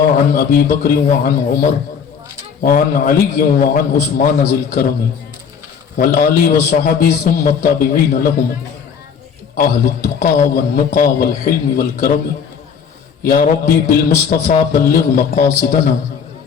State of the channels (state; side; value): quieter; right; 6.8 dB